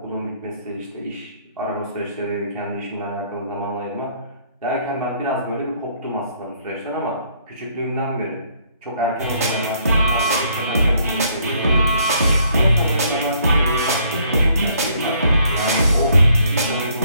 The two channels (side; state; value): both; inverted; correlation -0.66